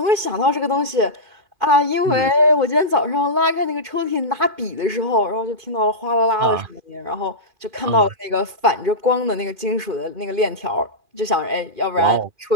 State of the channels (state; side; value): late; left; 2.4 ms